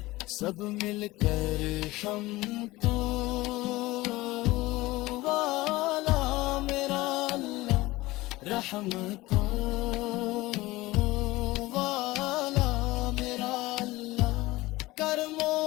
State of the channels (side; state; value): right; quieter; 19.5 dB